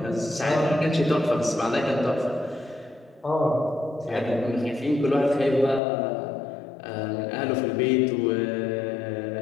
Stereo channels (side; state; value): right; drops out; at 5.8 s